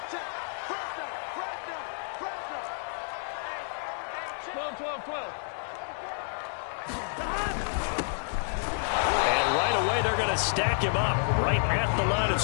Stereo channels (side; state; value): right; silent; digital silence